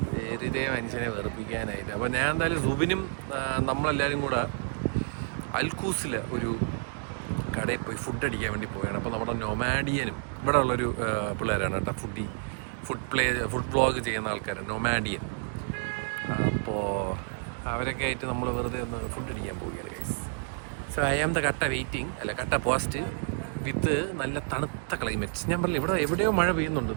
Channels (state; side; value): silent; left; digital silence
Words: വെറുതെ മനുഷ്യനെ വെറുപ്പിക്കാനായിട്ട്. അപ്പോൾ ഞാൻ എന്തായാലും സുബിനും നമ്മളെല്ലാവരും കൂടെ അൽക്കൂസിലെ ഒരു കടയിൽ പോയി ഫുഡ് അടിക്കാൻ വേണ്ടി പോവുകയാണ്. അപ്പോൾ നമ്മുടെ നൊമാഡിയനും ഇവിടെ ഉള്ളൊരു പിള്ളേരാണ് കേട്ടോ, ഫുഡ് വ്ളോഗ് ചെയ്യുന്ന ആൾക്കാരാണ് നൊമാഡിയൻ. അപ്പോൾ അവരൊക്കെ ആയിട്ട് നമ്മൾ വെറുതെ ഒന്ന് ഫുഡ് അടിക്കാൻ പോവുകയാണ് guys. So I am the കട്ട വെയിറ്റിംഗ്, അല്ല കട്ട പോസ്റ്റ് വിത്ത് നല്ല തണുത്ത ക്ലൈമറ്റ്. ഞാൻ പറഞ്ഞില്ല ഇവിടെ എവിടെയോ മഴ പെയ്യുന്നുണ്ട്,